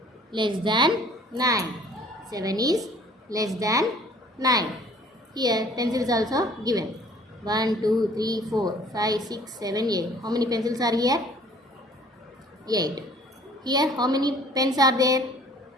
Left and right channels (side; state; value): both; normal; correlation 0.53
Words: less than 9. 7 is less than 9. Here pencil is also given. 1, 2, 3, 4, 5, 6, 7, 8. How many pencils are here? 8. Here how many pens are there?